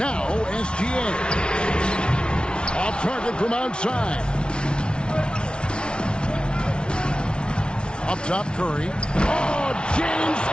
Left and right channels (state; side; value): late; right; 0.056 ms